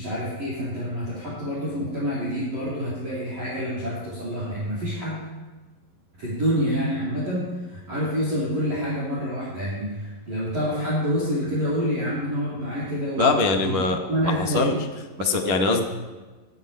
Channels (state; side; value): late; left; 11 ms